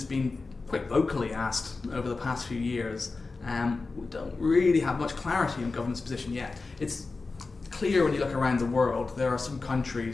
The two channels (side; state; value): right; quieter; 3.9 dB